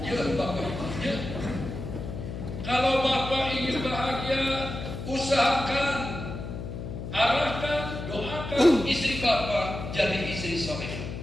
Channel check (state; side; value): noise; left; hum, 7 dB below the sound